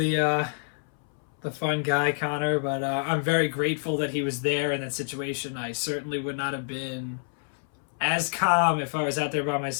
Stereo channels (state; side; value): silent; right; 60 dB below the other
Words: fun guy, Connor, but I'm very grateful that he was there in that situation. I certainly would not have been as calm if I was out there by